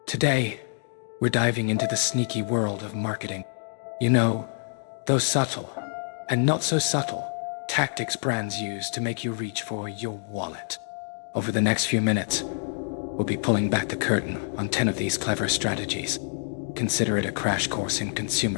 Today, we're diving into the sneaky world of marketing. You know, those subtle, and not so subtle, tactics brands use to make you reach for your wallet. Over the next few minutes, we'll be pulling back the curtain on 10 of these clever strategies. Consider it a crash course in consumer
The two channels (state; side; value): silent; right; digital silence